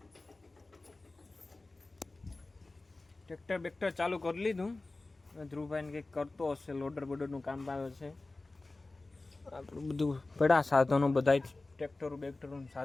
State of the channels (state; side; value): quieter; right; 3.2 dB